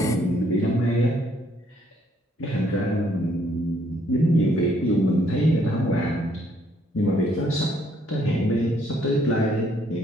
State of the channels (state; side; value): normal; both; correlation 0.68